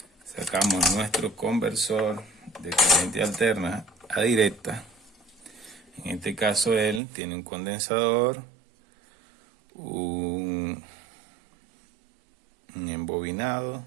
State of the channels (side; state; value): left; drops out; at 7.0 s